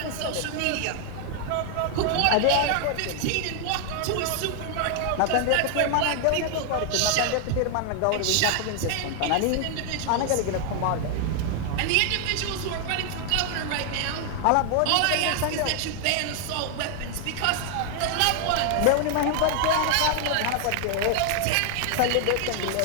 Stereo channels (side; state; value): both; different; correlation 0.00